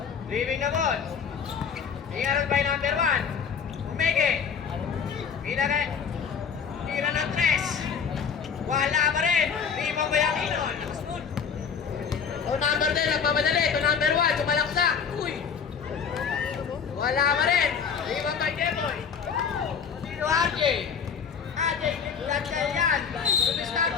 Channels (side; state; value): right; quieter; 6.6 dB